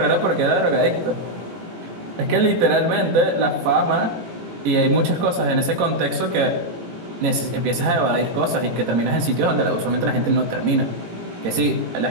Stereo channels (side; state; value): left; late; 18 ms